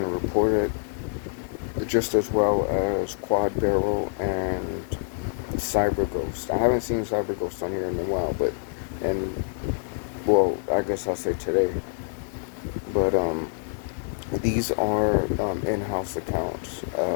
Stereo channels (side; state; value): right; silent; 61 dB below the other